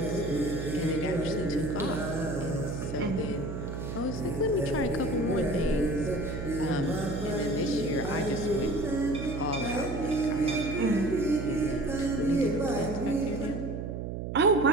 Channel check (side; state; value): right; noise; hum, 5 dB below the sound